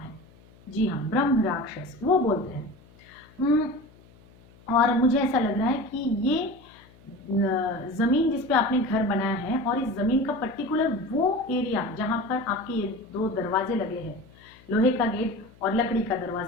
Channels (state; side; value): noise; left; hum, 26 dB below the sound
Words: जी हाँ, ब्रह्म राक्षस, वो बोलते हैं। और मुझे ऐसा लग रहा है कि ये जमीन जिस पे आपने घर बनाया है, और इस जमीन का पर्टिकुलर वो एरिया जहां पर आपके ये 2 दरवाजे लगे हैं, लोहे का गेट और लकड़ी का